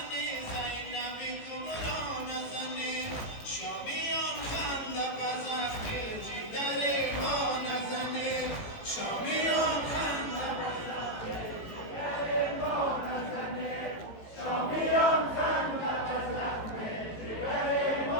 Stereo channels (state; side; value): late; right; 18 ms